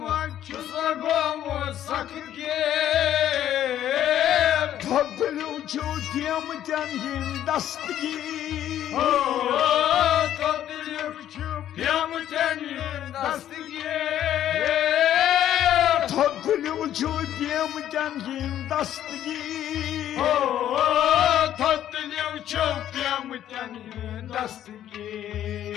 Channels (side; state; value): right; quieter; 11.4 dB